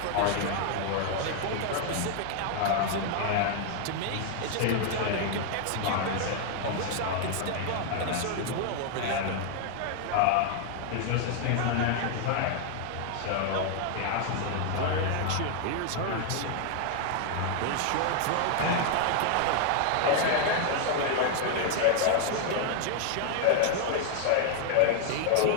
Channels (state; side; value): different; both; correlation 0.00